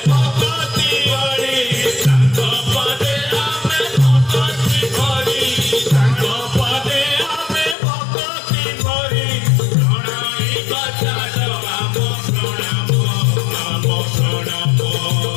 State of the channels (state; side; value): drops out; right; at 7.8 s